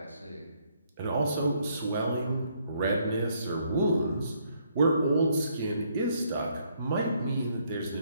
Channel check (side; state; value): both; inverted; correlation -0.70